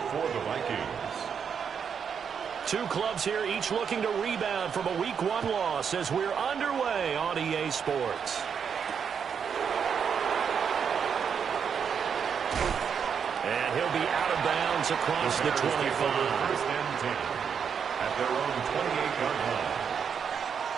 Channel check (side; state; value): left; quieter; 7.0 dB